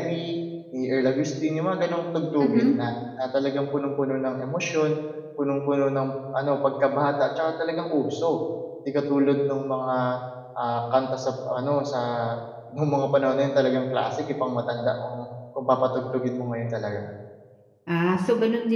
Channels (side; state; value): both; identical; correlation 1.00